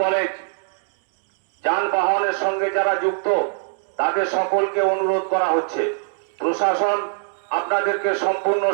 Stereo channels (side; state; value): left; silent; digital silence